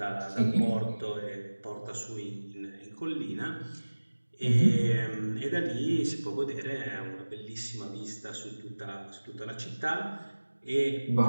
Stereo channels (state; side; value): inverted; both; correlation -1.00